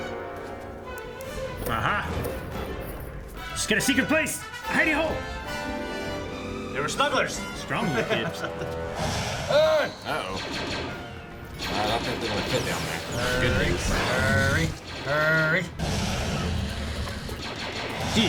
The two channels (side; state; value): both; identical; correlation 1.00